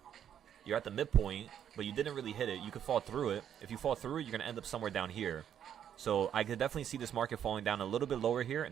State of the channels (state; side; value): quieter; left; 9.5 dB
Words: you're at the midpoint, but you didn't really hit it. You could fall through it. If you fall through it, you're going to end up somewhere down here. So I could definitely see this market falling down a little bit lower here,